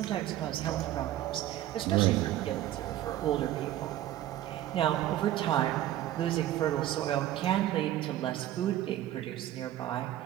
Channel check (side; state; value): left; quieter; 13.3 dB